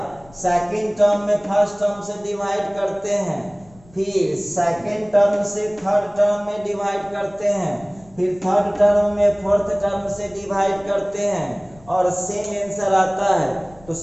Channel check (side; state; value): left; noise; rumble, 26 dB below the sound